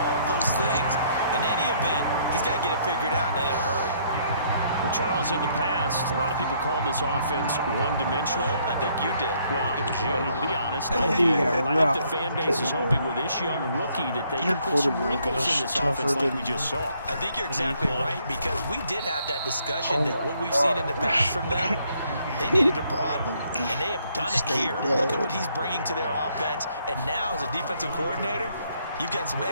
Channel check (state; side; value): inverted; both; correlation -0.68